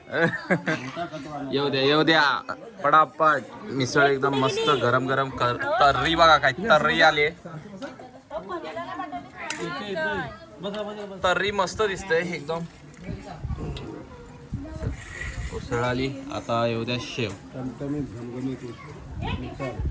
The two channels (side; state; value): both; identical; correlation 1.00